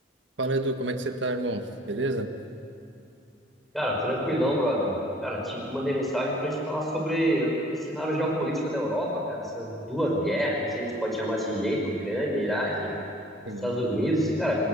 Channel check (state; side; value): normal; both; correlation 0.52